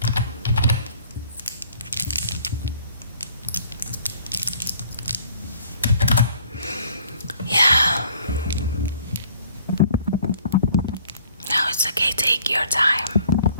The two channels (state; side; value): inverted; both; correlation -0.57